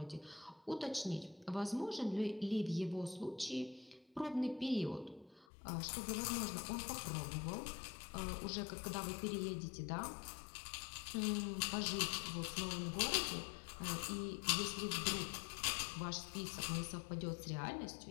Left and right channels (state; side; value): drops out; right; at 5.5 s